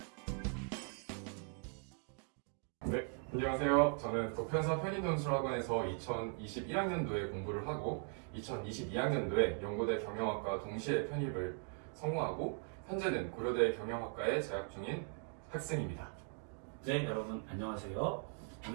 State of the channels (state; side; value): quieter; left; 39.8 dB